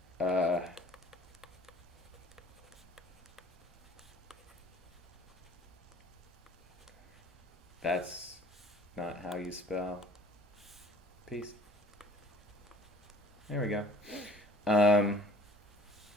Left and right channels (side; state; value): both; normal; correlation 0.51